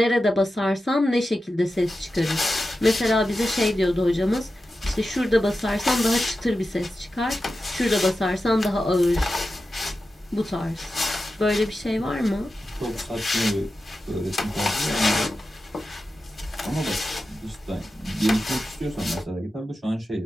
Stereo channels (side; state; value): both; normal; correlation 0.92